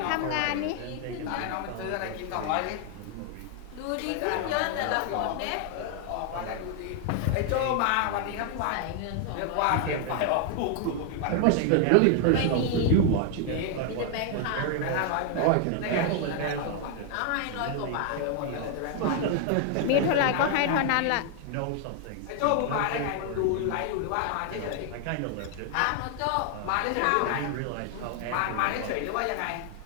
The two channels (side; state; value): both; different; correlation 0.00